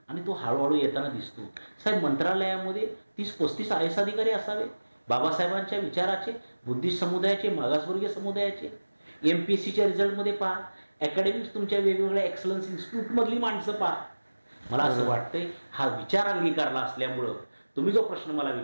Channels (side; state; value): both; inverted; correlation -1.00